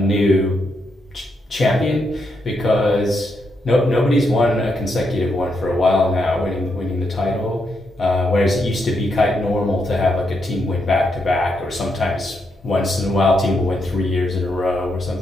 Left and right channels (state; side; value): normal; both; correlation 0.80